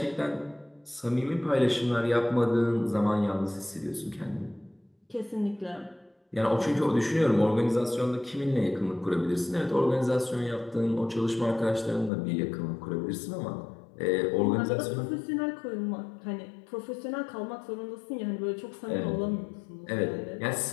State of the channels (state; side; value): drops out; right; at 12.1 s